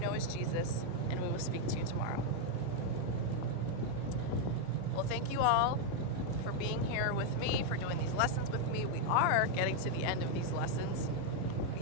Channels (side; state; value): both; different; correlation 0.00